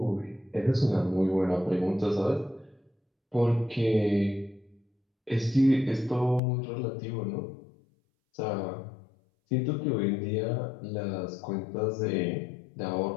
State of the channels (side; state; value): right; drops out; at 6.4 s